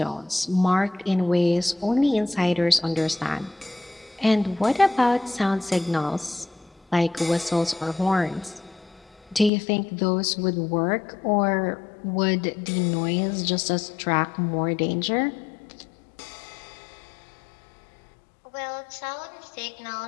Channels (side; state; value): right; drops out; at 9.5 s